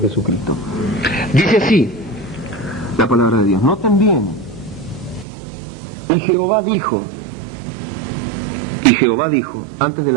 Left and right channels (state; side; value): drops out; left; at 5.2 s